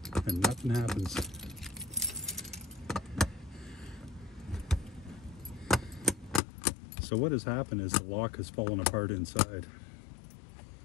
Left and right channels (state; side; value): drops out; right; at 6.4 s